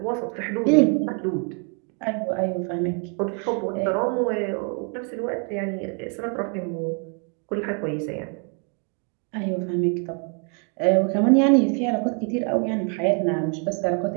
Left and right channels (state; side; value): quieter; left; 39.3 dB